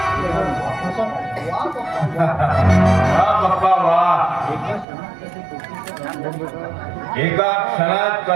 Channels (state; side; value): drops out; left; at 4.9 s